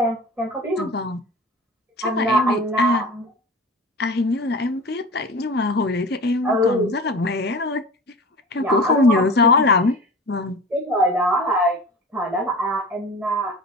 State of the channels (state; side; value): normal; both; correlation 0.37